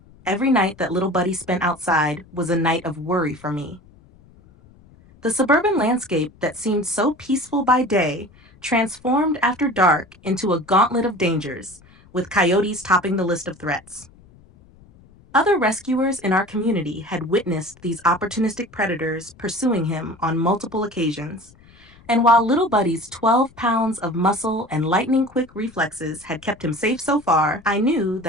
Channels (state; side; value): noise; left; rumble, 26 dB below the sound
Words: Every night that Little Buddy spent outside was a night of worry for me. The suburban landscape that seemed so peaceful by day transformed after dark into a gauntlet of dangers, with coyotes topping the list of threats. Other rescuers in our community had witnessed these opportunistic predators pursuing him on multiple occasions, and while Little Buddy's 12 pounds of muscle and lightning-quick reflexes had kept him safe so far, I knew